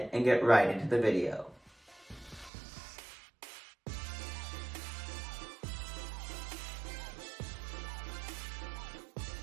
and get right into the video.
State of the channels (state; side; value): drops out; left; at 2.5 s